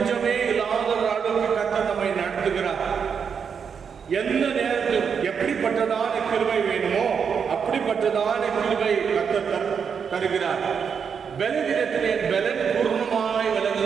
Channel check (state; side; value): quieter; left; 6.7 dB